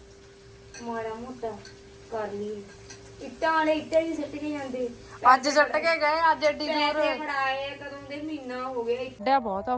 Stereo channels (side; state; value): both; identical; correlation 1.00